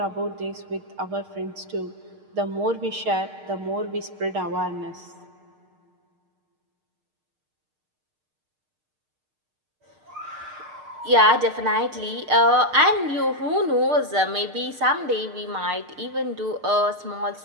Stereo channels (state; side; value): late; left; 6.5 ms